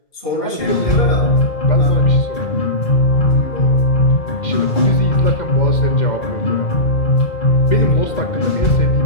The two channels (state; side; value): late; right; 2.1 ms